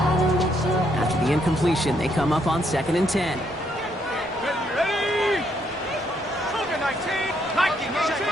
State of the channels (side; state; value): both; normal; correlation 0.73